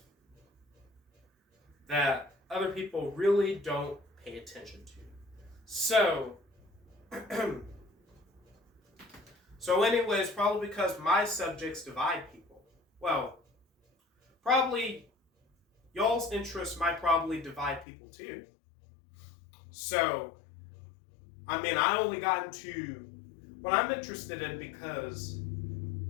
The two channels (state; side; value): drops out; right; at 17.9 s